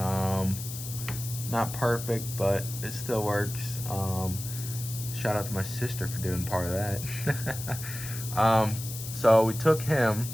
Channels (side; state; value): left; noise; hiss, 9 dB below the sound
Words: perfect, but it still works. Shout out to my sister for doing part of that. So we took him,